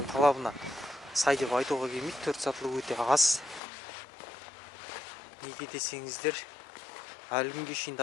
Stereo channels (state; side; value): drops out; right; at 3.6 s